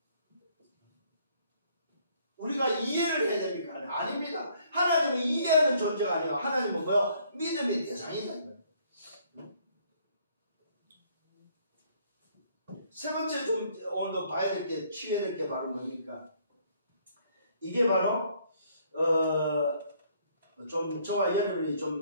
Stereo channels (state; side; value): inverted; both; correlation -0.64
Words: 우리가 이해를 해야 됩니까? 아닙니다. 하나님은 이해하는 존재가 아니에요. 하나님은 뭐요? 믿음의 대상이다. 세 번째 좀 오늘도 봐야 될 게, 취해야 될 게 바로 뭡니까? 이게 바로 좀 저와 여러분이